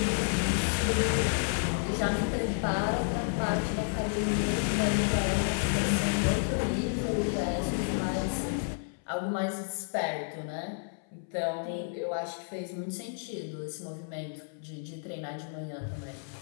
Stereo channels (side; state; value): right; silent; 57 dB below the other